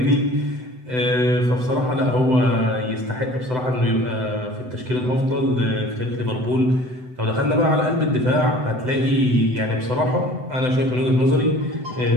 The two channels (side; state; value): left; late; 7.9 ms